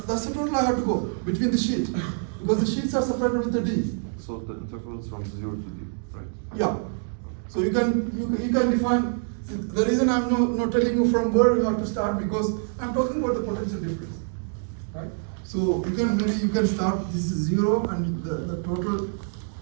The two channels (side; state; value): left; silent; 61 dB below the other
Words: total I have to go between the sheet because the sheets are separated with the d. So the interval is from 0 to d, right? Yeah. So you can define. The reason I'm not telling you from where you have to start because I'm talking about the potential difference, right? So you can start. This is 0 and the total